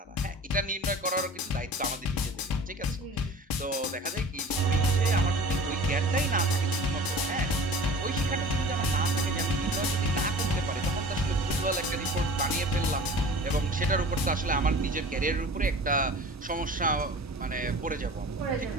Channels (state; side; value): normal; both; correlation 0.41